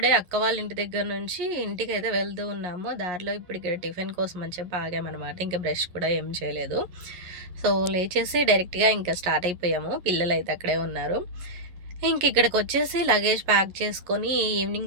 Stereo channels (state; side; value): late; left; 11 ms